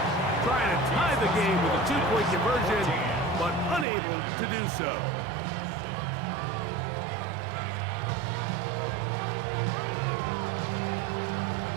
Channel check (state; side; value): drops out; left; at 3.9 s